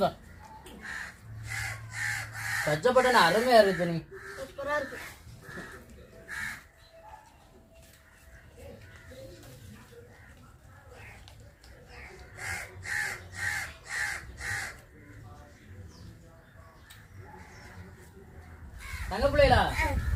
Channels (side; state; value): both; identical; correlation 1.00